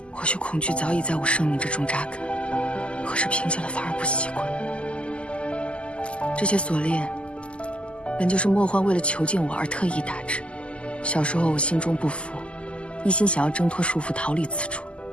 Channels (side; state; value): right; late; 0.054 ms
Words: 或许恐惧早已在我生命之中扎根，可是平静了反而不习惯。这些锁链，本就是莫欢为了囚禁我而特意打制。小时候我心中不服，一心想要挣脱束缚逃离此处，